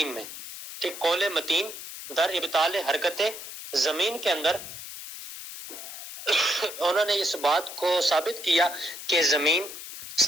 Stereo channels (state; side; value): noise; left; hiss, 11 dB below the sound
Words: میں، کہ قول متین در ابطال حرکت زمین کے اندر انہوں نے اس بات کو ثابت کیا کہ زمین